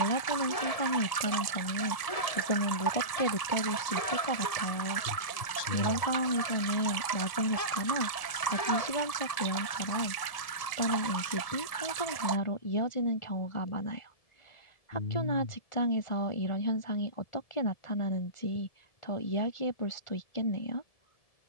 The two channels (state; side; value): late; right; 1.7 ms